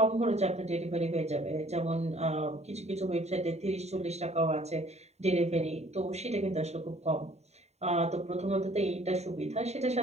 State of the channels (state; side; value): late; left; 0.32 ms